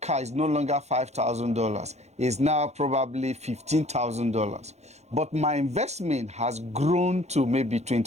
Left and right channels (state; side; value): late; left; 0.32 ms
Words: car is no longer $5,000. It's now probably $15,000. But my investment has grown to maybe